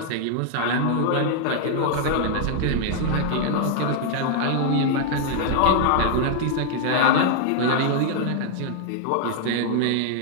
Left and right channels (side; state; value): both; different; correlation 0.00